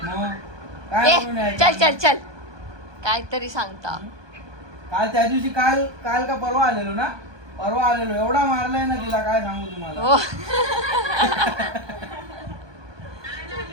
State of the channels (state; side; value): late; left; 1.2 ms